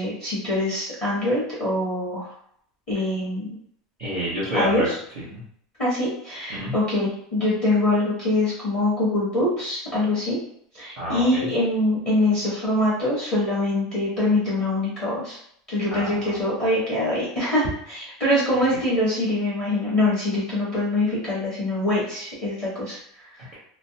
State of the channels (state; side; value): normal; both; correlation 0.31